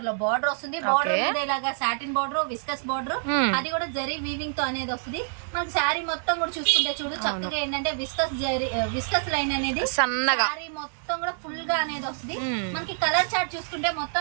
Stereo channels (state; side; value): silent; left; digital silence